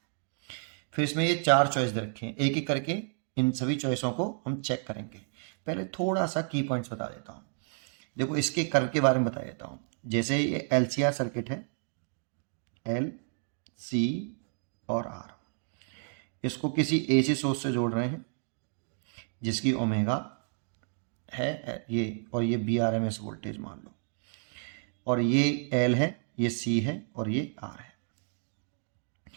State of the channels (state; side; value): silent; left; 57 dB below the other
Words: फिर इसमें ये चार चॉइस दे रखे हैं, एक एक करके इन सभी चॉइसों को हम चेक करेंगे। पहले थोड़ा सा की पॉइंट्स बता देता हूँ। देखो, इसके कर्व के बारे में बता देता हूँ। जैसे ये एलसीआर सर्किट है, एल सी और आर, इसको किसी एसी सोर्स से जोड़ रहे हैं जिसकी ओमेगा है ये, और ये बी आर एम एस वोल्टेज मान लो, और ये एल है, ये सी है और ये आर है।